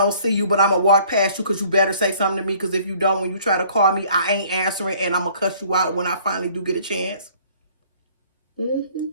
see you, but I'm going to walk past you because you better say something to me, because if you don't, when you try to call me, I ain't answering, and I'm going to cuss you out when I finally do get a chance.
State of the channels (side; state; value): both; inverted; correlation -0.56